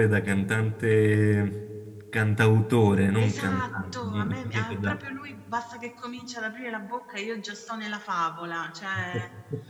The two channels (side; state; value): both; identical; correlation 1.00